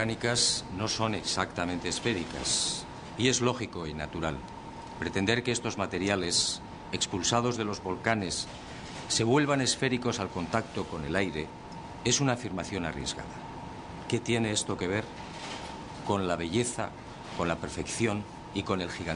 no son exactamente esféricas, y es lógico y natural. Pretender que estos materiales, expulsados de los volcanes, se vuelvan esféricos al contacto con el aire, es una afirmación arriesgada. ¿Qué tiene esto que ver con la belleza, con la perfección y con el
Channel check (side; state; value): both; identical; correlation 1.00